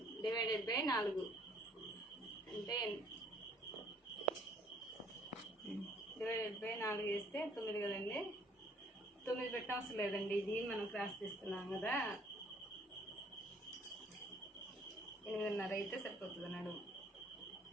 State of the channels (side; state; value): both; normal; correlation 0.60